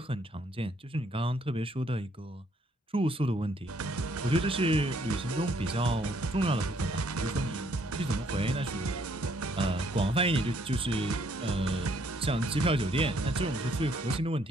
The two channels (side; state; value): both; normal; correlation 0.67